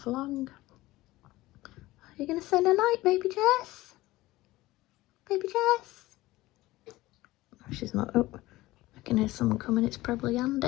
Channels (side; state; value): right; quieter; 18.1 dB